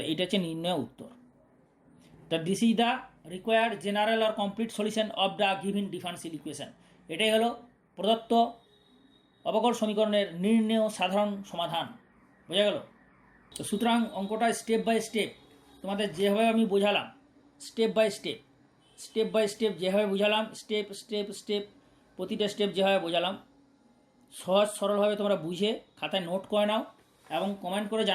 এইটা হচ্ছে নির্ণয় উত্তর। তা this is the required general or complete solution of the given differential equation, এটাই হলো প্রদত্ত অবকল সমীকরণের নির্ণেয় সাধারণ সমাধান, বোঝা গেল। তো সুতরাং অঙ্কটা স্টেপ বাই স্টেপ তোমাদের যেভাবে আমি বোঝালাম, স্টেপ বাই স্টেপ যেভাবে বোঝালাম, স্টেপ প্রতিটা স্টেপ যেভাবে বোঝালাম, সহজ সরলভাবে তোমরা বুঝে খাতায় নোট করে নাও এবং কমেন্ট করে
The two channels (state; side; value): identical; both; correlation 1.00